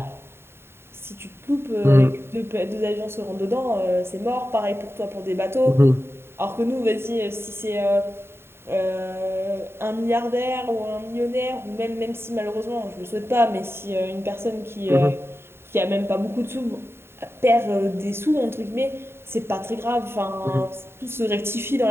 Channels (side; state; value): left; late; 0.11 ms